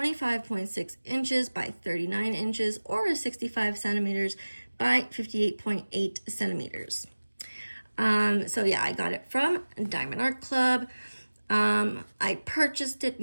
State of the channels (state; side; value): inverted; both; correlation -1.00